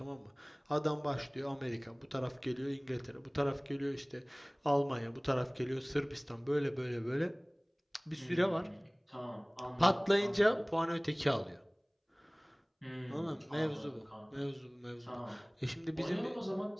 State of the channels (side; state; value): both; identical; correlation 1.00